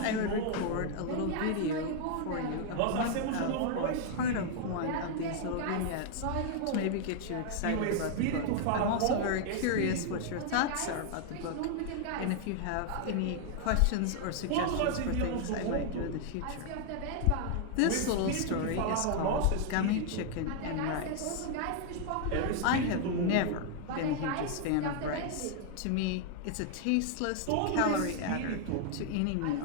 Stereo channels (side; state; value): both; different; correlation 0.00